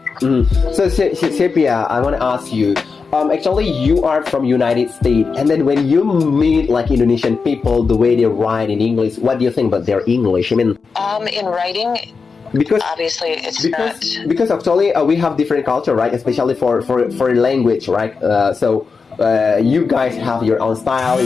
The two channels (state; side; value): quieter; right; 4.9 dB